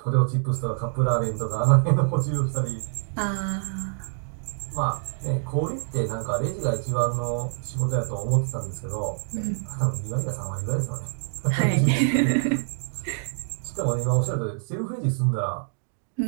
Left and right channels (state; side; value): silent; left; digital silence